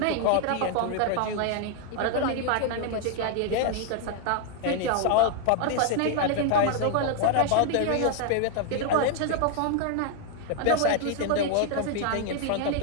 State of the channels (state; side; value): different; both; correlation 0.00